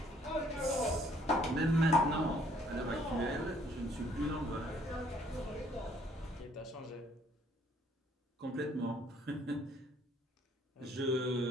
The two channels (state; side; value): normal; both; correlation 0.62